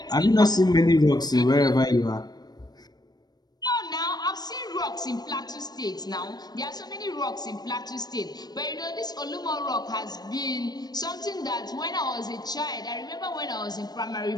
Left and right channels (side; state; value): right; late; 0.19 ms